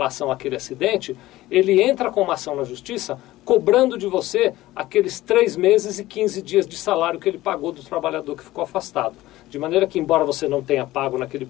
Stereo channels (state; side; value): quieter; right; 16.7 dB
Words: àquele acidente, ele entra com uma ação na justiça cobrando de você aqueles 3 meses e 15 dias de salário que ele pagou do trabalhador que ficou afastado. De maneira que, embora você não tenha pago naquele